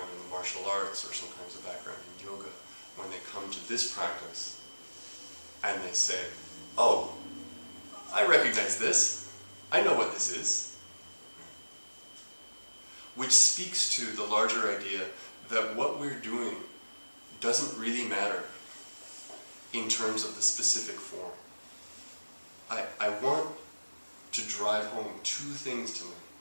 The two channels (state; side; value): inverted; both; correlation -1.00